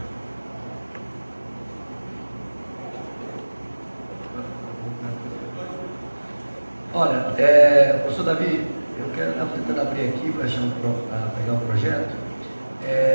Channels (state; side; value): inverted; both; correlation -1.00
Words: Olha, professor Davi, eu quero tentando abrir aqui para pegar o projeto.